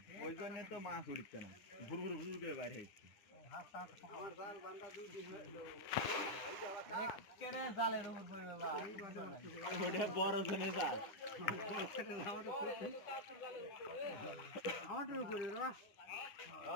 ওই জন্য তো মাছ উঠছে না ঘুর ঘুর ঘুর করে বাইরে হচ্ছে জালের উপর বড় জনে জাল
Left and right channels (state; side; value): late; right; 9.8 ms